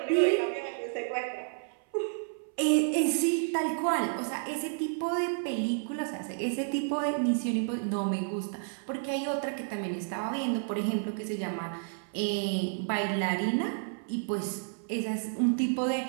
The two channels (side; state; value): left; silent; 57 dB below the other